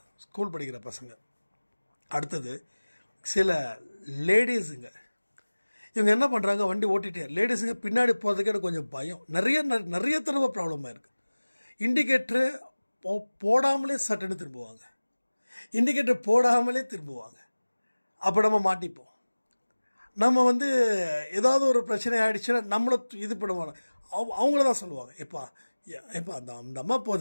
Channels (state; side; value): inverted; both; correlation -1.00